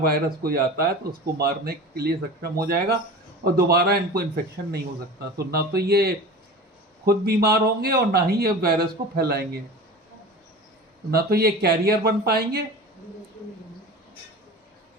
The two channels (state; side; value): normal; both; correlation 0.35